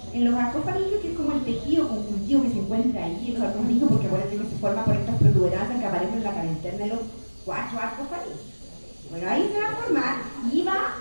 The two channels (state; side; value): inverted; both; correlation -1.00